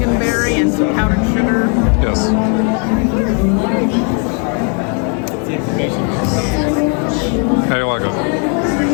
and some powdered sugar. Yes. How do you like it?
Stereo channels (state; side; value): quieter; right; 38.6 dB